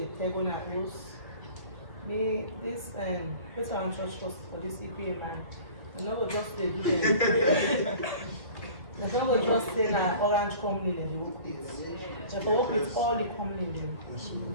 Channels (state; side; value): late; right; 1.6 ms